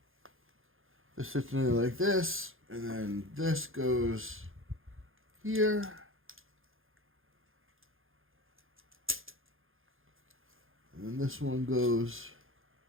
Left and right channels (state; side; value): late; left; 0.60 ms